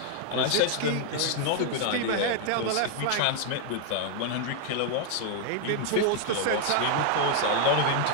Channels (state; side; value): different; both; correlation 0.00